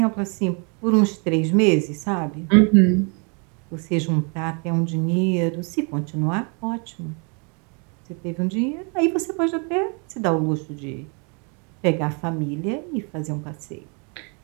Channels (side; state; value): left; quieter; 35.7 dB